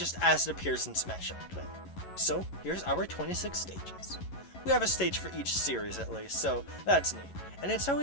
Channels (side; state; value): right; late; 11 ms